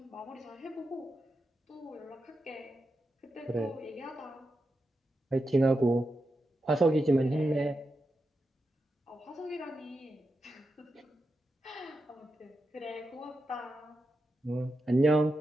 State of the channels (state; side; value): normal; both; correlation 0.88